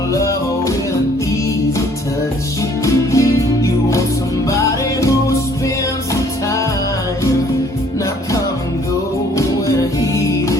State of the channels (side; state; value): both; normal; correlation 0.59